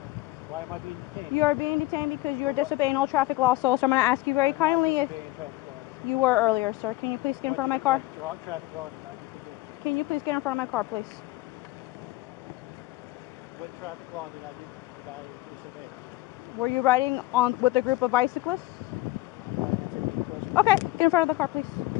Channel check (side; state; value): right; quieter; 18.6 dB